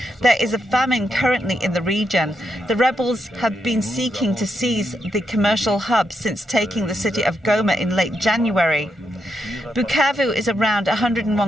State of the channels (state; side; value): normal; both; correlation 0.82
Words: There is a famine currently in the region. The rebels have been seeking to seize the commercial hub since taking the city of Goma in late January. Bukavu is around